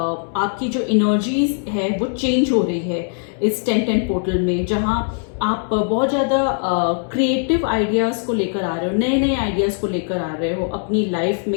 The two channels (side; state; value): right; silent; digital silence